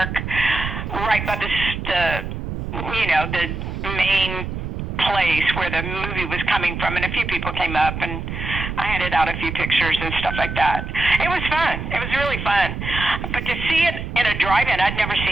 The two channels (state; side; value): noise; right; rumble, 5 dB below the sound